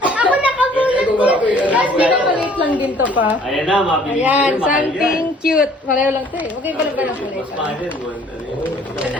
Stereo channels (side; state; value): both; normal; correlation 0.56